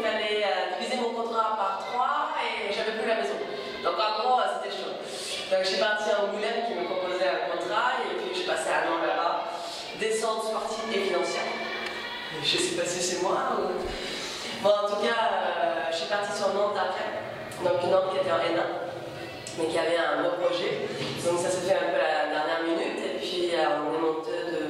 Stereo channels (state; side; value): identical; both; correlation 1.00